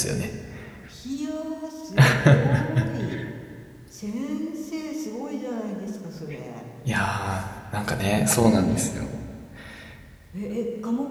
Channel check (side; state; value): both; identical; correlation 1.00